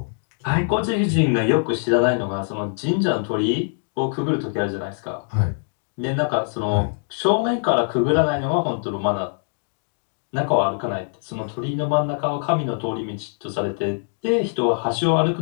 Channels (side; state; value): right; silent; digital silence